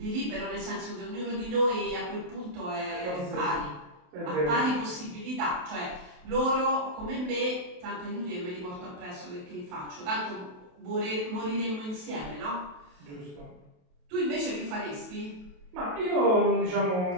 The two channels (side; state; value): left; late; 28 ms